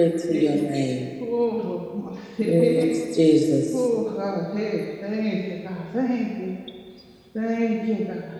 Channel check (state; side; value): identical; both; correlation 1.00